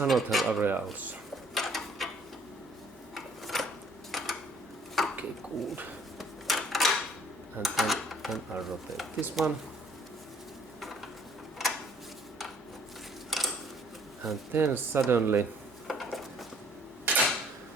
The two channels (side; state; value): both; normal; correlation 0.60